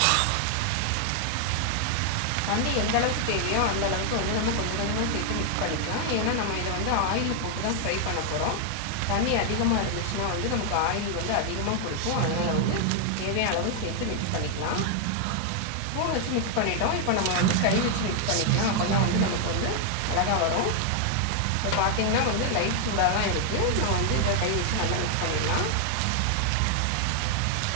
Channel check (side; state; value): both; different; correlation 0.00